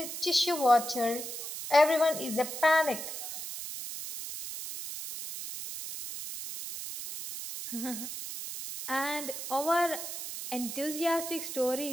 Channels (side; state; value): right; noise; hiss, 7 dB below the sound